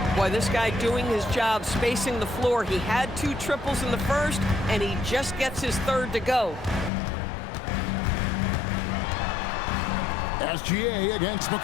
Boy, this guy doing his job spacing the floor. He had 2 triples in the first, and he just gets his third to go. SGA against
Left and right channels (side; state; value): right; drops out; at 6.9 s